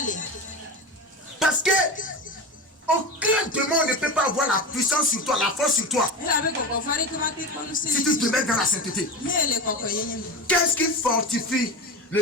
Parce que aucun démon ne peut pas avoir la puissance sur toi, la force sur toi. Si tu te mets dans la sainteté. Qu'est-ce qui fortifie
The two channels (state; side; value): normal; both; correlation 0.25